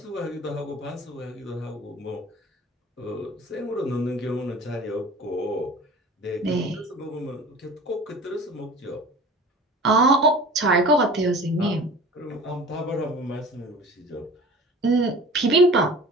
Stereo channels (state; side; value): normal; both; correlation 0.41